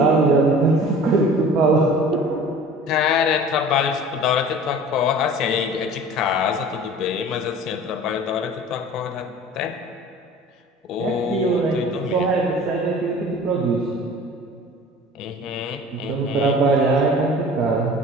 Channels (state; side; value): normal; both; correlation 0.43